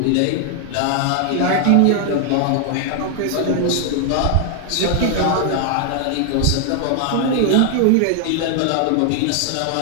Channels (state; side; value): different; both; correlation 0.00